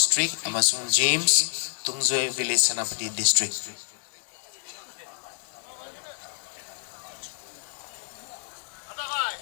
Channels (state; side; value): silent; right; 57 dB below the other